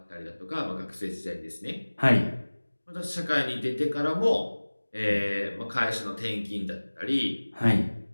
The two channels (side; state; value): both; inverted; correlation -1.00